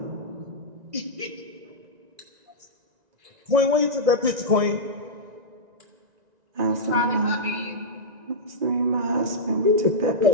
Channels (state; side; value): late; left; 1.9 ms